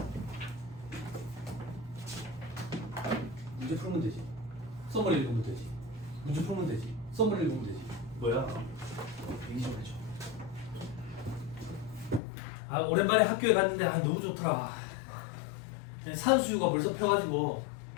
문제 풀면 되지. 썸머리 읽으면 되지. 문제 풀면 되지. 썸머리 읽으면 되지. 뭐야? 얘기 좀 해줘. 아, 오랜만에 학교에 갔는데 너무 좋더라. 산수유가 벌써 펴가지고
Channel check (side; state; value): right; drops out; at 12.2 s